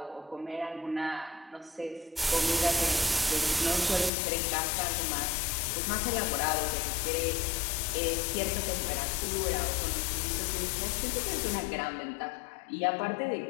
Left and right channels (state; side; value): drops out; right; at 4.1 s